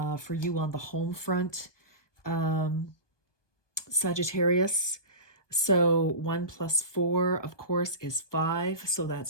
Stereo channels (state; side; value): late; right; 1.2 ms